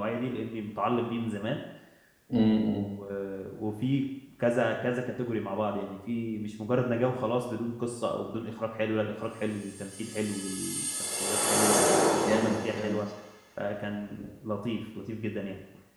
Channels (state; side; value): identical; both; correlation 1.00